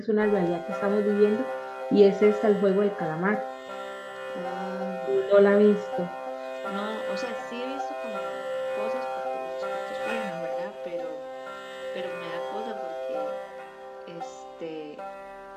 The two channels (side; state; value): both; identical; correlation 1.00